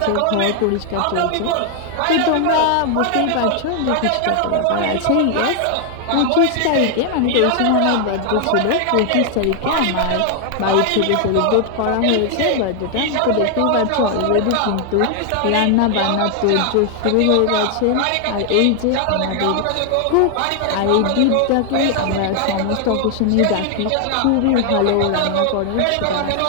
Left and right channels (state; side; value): different; both; correlation 0.00